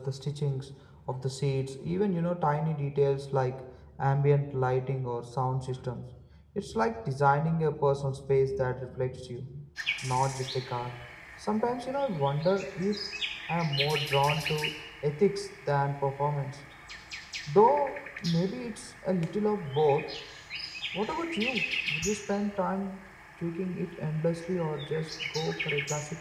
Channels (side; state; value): both; identical; correlation 1.00